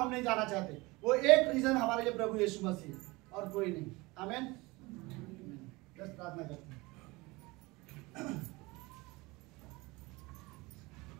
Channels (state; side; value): quieter; left; 23.2 dB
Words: नहीं जाना चाहते। वो एक रीजन हमारे लिए प्रभु यीशु मसीह और कोई नहीं। आमीन। बस प्रार्थना करते हैं।